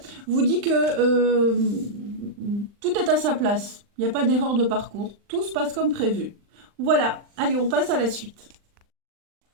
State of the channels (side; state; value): left; late; 39 ms